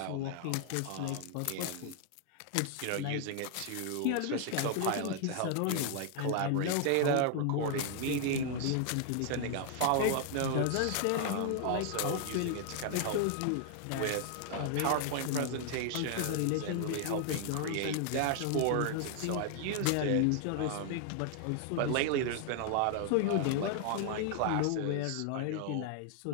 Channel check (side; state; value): both; different; correlation 0.00